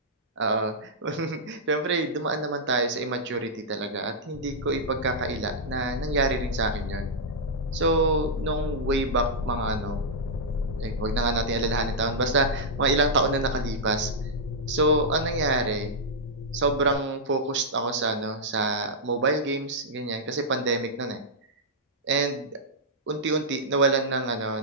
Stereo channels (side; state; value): both; normal; correlation -0.09